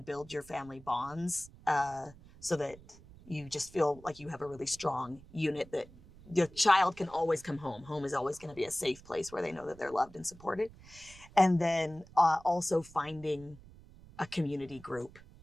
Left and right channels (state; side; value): noise; right; rumble, 21 dB below the sound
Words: your family bonds, so that you just feel like you have a really strong unit, that your child can always come home. Home is always going to be a safe place where they know that they're loved and supported. And then also finding a community group